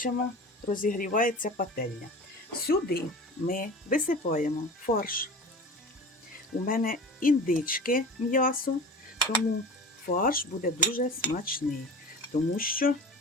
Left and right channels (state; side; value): normal; both; correlation 0.35